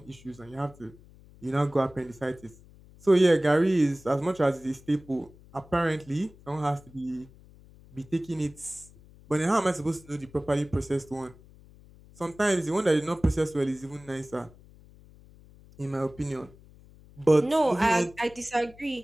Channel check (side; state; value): left; noise; hum, 23 dB below the sound